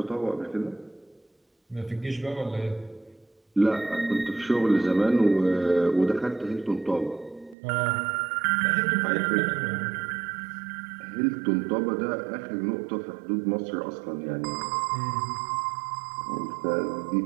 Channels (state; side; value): drops out; left; at 7.6 s